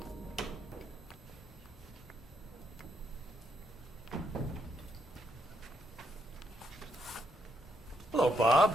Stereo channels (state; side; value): normal; both; correlation 0.76